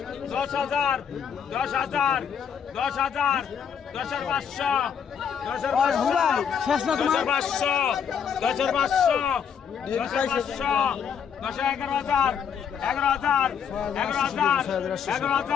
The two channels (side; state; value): right; quieter; 7.5 dB